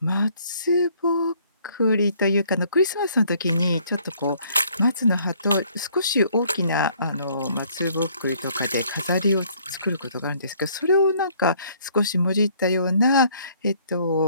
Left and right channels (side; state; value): both; inverted; correlation -0.62